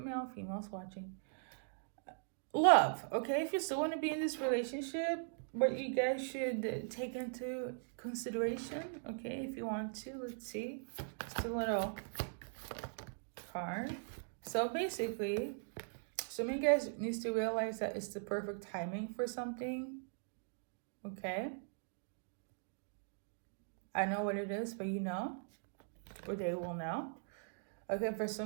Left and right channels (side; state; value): left; silent; digital silence